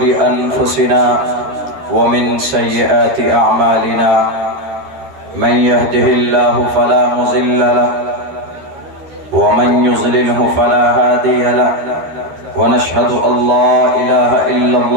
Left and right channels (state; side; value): late; left; 13 ms